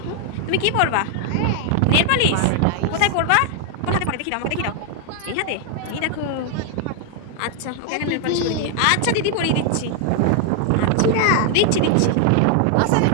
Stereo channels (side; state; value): both; different; correlation 0.00